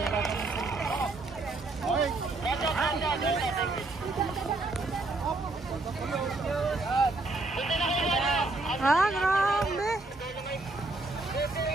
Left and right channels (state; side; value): quieter; left; 3.2 dB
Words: Okay. Ah, grabe.